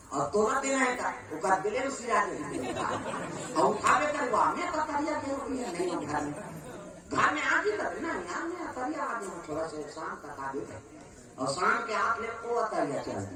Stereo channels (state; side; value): identical; both; correlation 1.00